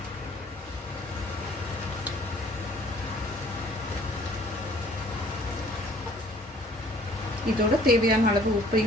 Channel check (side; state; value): both; normal; correlation 0.56